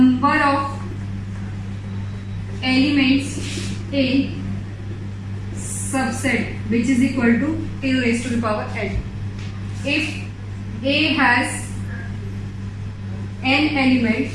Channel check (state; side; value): identical; both; correlation 1.00